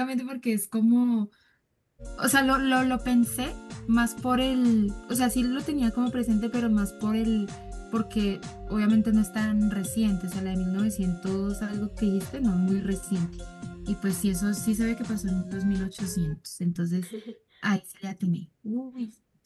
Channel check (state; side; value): identical; both; correlation 1.00